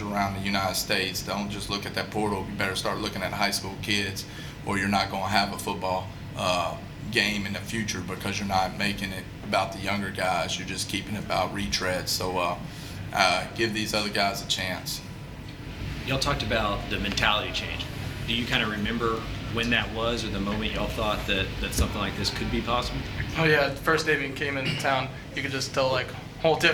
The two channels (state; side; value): identical; both; correlation 1.00